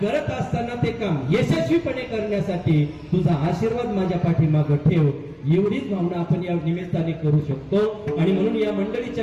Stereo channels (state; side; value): identical; both; correlation 1.00